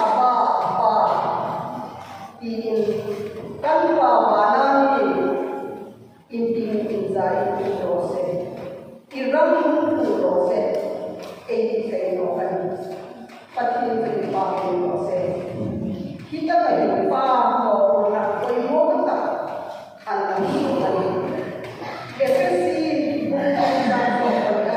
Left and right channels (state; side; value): identical; both; correlation 1.00